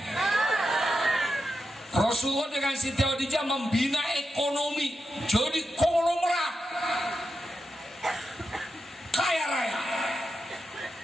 Rasulullah dengan Siti Khadijah membina ekonomi, jadi konglomerat, kaya raya.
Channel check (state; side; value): normal; both; correlation 0.88